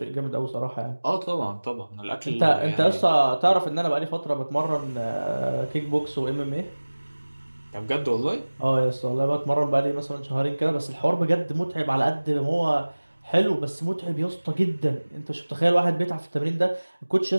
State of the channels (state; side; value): inverted; both; correlation -1.00